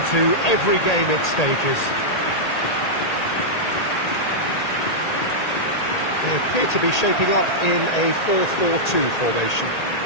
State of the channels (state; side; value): late; right; 1.8 ms